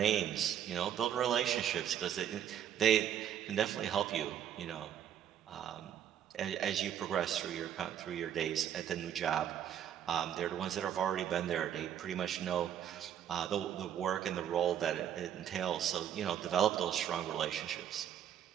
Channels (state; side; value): quieter; left; 9.8 dB